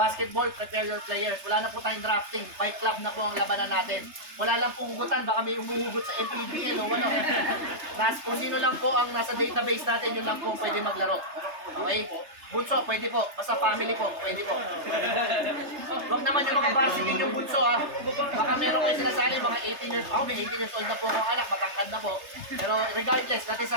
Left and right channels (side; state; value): left; late; 3.3 ms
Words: prepare your players. Wala na po tayong drafting. Fight club na po ang labanan natin. Wala lang pong hugutan, baka may umuhugot sa MPBL o ano. Kung sino lang po ang nasa database natin, yun lang po pwede maglaro. Okay? Bunso, pwede po. Basta family po, pwede po. Huwag naman yung mga varsity yung bunso ha. Baka meron kayo sinasali, mga 18 years old. May 18 years old na po akong anak, matangkad na po. Pero regardless, that is a